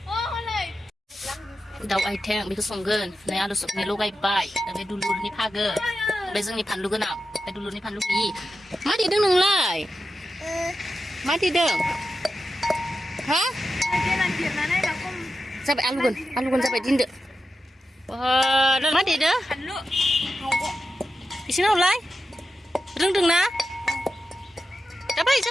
दाउ आइथें बेखौ संगोन नै आलु सबनि लगायबाय बे दुलुरनि फागो बे जोंनि फानलु गोनां बे दुलुरनि फानलु गैयि मा देदों नोंलाय मा देदों हा जाबाय आलुगोन जाबाय दिनदो मा देदो एसे नावलाय रोंदोंना जाबाय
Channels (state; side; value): normal; both; correlation 0.91